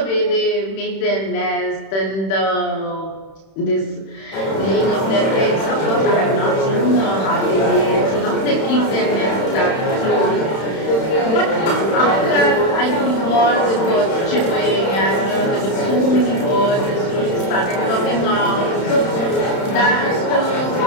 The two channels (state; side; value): late; right; 31 ms